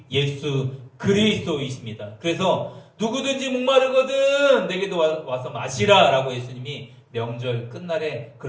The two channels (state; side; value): identical; both; correlation 1.00